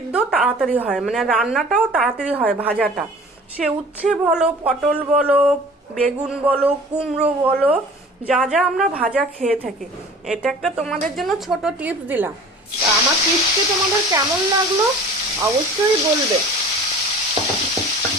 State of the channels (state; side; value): normal; both; correlation 0.44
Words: তাড়াতাড়ি হয়, মানে রান্নাটাও তাড়াতাড়ি হয়। ভাজাটা সে উচ্ছে বলো, পটল বলো, বেগুন বলো, কুমড়ো বলো, যা যা আমরা ভাজা খেয়ে থাকি। এটা একটা তোমাদের জন্য ছোট টিপস দিলাম। আমার টিপসটি তোমাদের কেমন লাগলো অবশ্যই বলবে।